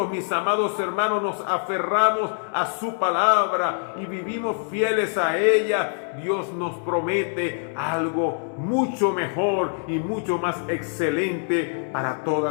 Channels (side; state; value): right; silent; 56 dB below the other